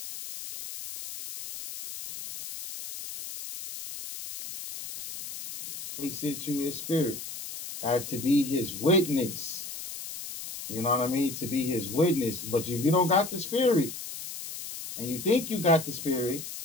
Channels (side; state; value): left; noise; hiss, 9 dB below the sound